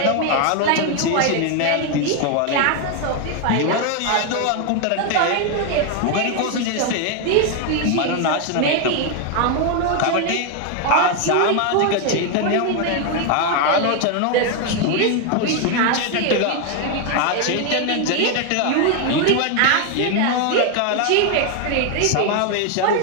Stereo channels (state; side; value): different; both; correlation 0.01